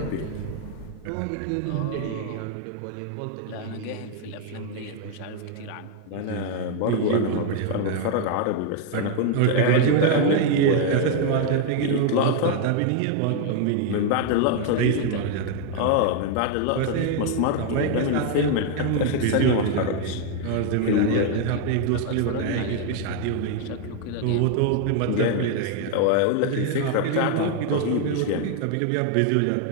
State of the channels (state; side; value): different; both; correlation 0.00